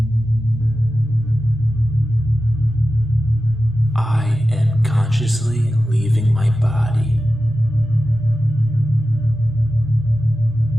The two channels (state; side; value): normal; both; correlation 0.93